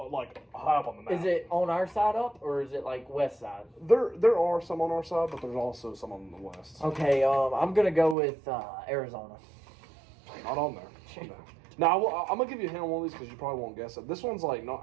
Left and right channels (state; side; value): drops out; left; at 8.2 s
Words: like high up on the map. Is it on our side up, or is it like west side? There are some on our side, but there's also some on the west. Okay, I'm gonna go with Arizona. Not on there. No. Now I'm gonna give you a hint on one of these because you probably won't guess it. This one's like not